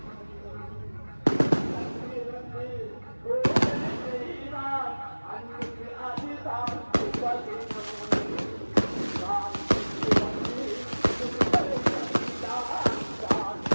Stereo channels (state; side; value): inverted; both; correlation -1.00